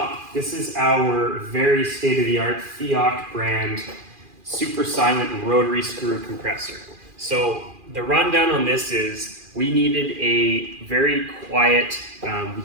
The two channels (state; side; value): late; left; 2.4 ms